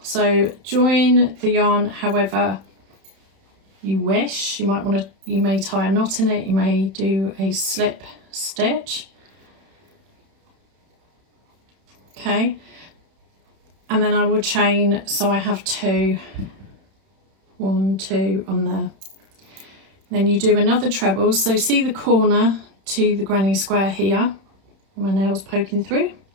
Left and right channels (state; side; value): late; left; 31 ms